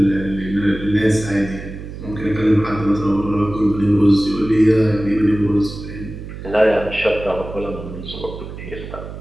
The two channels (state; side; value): noise; right; hum, 11 dB below the sound